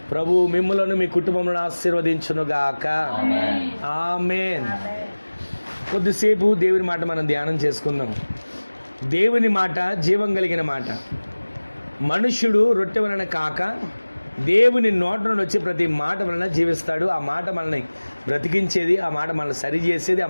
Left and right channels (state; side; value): inverted; both; correlation -1.00